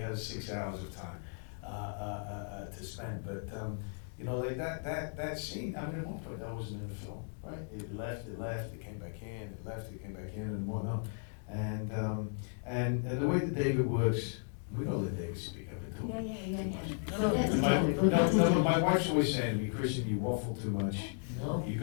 has 6 hours of time to spend, but you know, like that scene, I mean, at one point that wasn't in the film, right? It left, it came back in, it left, it came back in, and whatnot. And the way that David works, we gotta let David speak. I've been talking too much. No, my wife's always saying to me, Christian, you waffle too much. No. You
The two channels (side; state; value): right; silent; 54 dB below the other